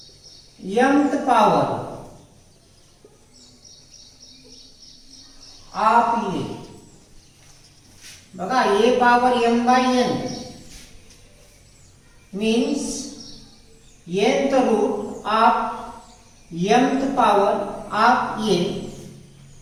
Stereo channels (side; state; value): both; identical; correlation 1.00